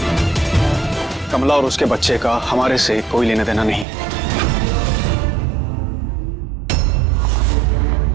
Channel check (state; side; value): drops out; left; at 3.9 s